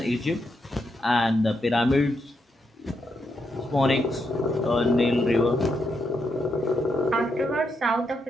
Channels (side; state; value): both; normal; correlation 0.81